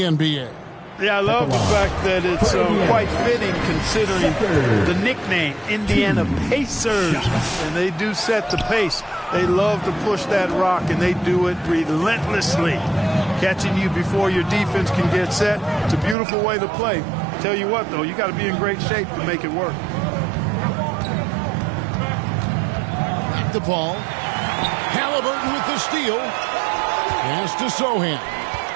NBA. Yeah, I love the fact that it's quite fitting considering the nickname, Indiana Pacers. And they do set the pace. They love to push that rock, and they do it relentlessly. Catching you before your defense can get set. It's a beautiful way to play. Tell you what, though, you got to be in great shape to make it work. Back to Paul. Halliburton with the steal. Pass to Sohan.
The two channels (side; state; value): left; drops out; at 16.2 s